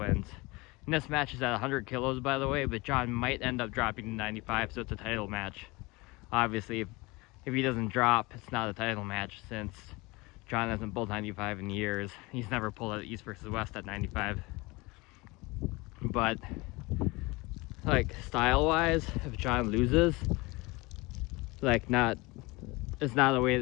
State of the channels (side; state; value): right; quieter; 24.0 dB